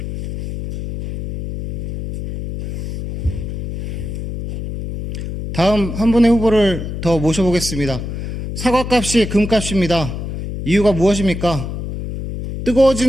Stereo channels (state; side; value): noise; left; hum, 6 dB below the sound